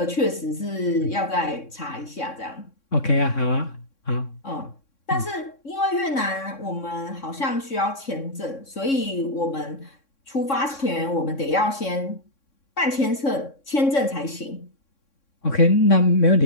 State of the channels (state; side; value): late; right; 3.6 ms